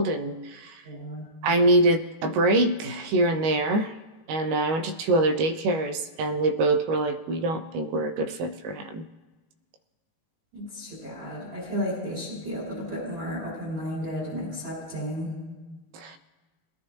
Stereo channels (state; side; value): late; left; 19 ms